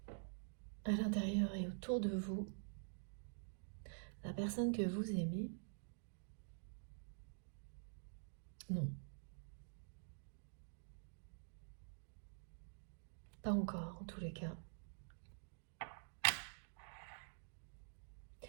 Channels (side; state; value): left; silent; digital silence